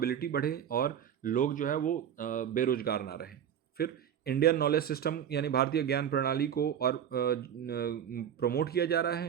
बढ़े और लोग जो है वो बेरोजगार ना रहें। फिर इंडियन नॉलेज सिस्टम यानी भारतीय ज्ञान प्रणाली को और प्रमोट किया जा रहा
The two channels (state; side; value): quieter; left; 9.2 dB